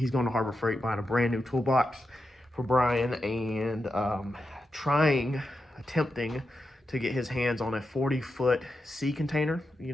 going to Harbor Freight buying a brand new toolbox for Bryan and attempting to get his hands on a 40-foot sea container, you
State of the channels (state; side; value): normal; both; correlation 0.88